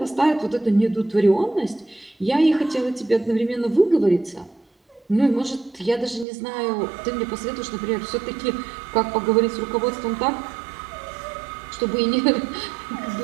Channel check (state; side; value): drops out; left; at 6.2 s